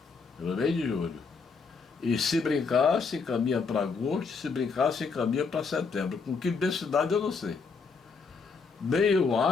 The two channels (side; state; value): right; quieter; 4.9 dB